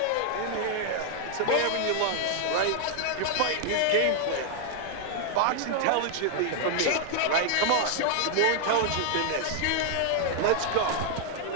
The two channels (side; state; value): both; different; correlation 0.00